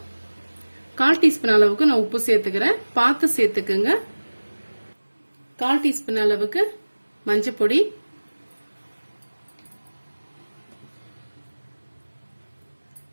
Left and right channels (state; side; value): inverted; both; correlation -1.00